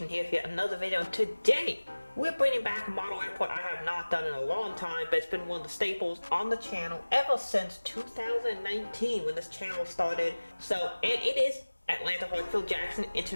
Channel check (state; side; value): inverted; both; correlation -1.00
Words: here for yet another video, and today we're bringing back a model airport I have not done in a long time, but it's been one of the staples on the channel ever since 2019 when this channel started. So it is Atlanta Heartsfield-Jackson